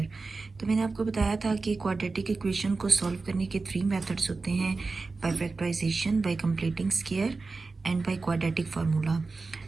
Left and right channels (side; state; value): left; quieter; 3.9 dB